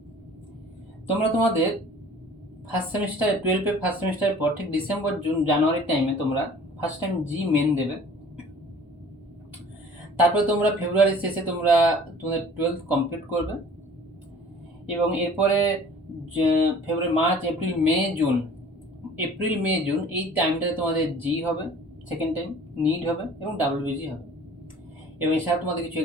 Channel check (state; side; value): normal; both; correlation 0.48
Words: তোমরা তোমাদের ফার্স্ট সেমিস্টার 12-এর ফার্স্ট সেমিস্টারের পর ঠিক ডিসেম্বর জানুয়ারির টাইমে তোমরা ফার্স্ট টাইম জি মেন দেবে। তারপরে তোমরা ফেব্রুয়ারির শেষে তোমরা তোমাদের 12th কমপ্লিট করবে এবং এরপরে ফেব্রুয়ারি, মার্চ, এপ্রিল মে জুন এই টাইমটাতে তোমাদের জি হবে, সেকেন্ড টাইম নিট হবে এবং ডাব্লিউবিজি হবে। এবং এছাড়া তোমাদের কিছু